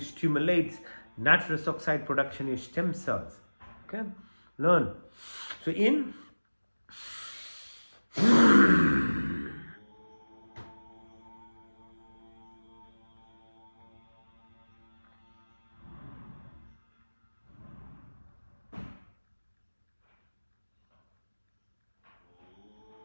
stimulates nitrous oxide production in stem cells. Okay, learn. So in.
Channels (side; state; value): both; inverted; correlation -1.00